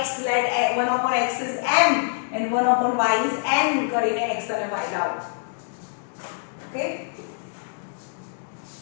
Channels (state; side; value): silent; right; 62 dB below the other